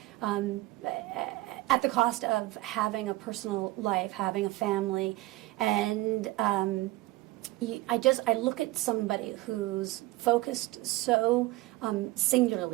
at the cost of having a personal life, having a family, and I look at somebody who's focused so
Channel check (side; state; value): left; quieter; 19.0 dB